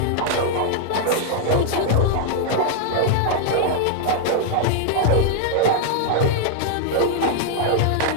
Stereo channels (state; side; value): different; both; correlation -0.01